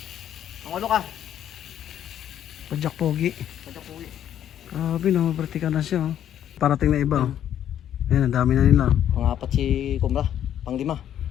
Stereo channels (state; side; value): quieter; right; 10.4 dB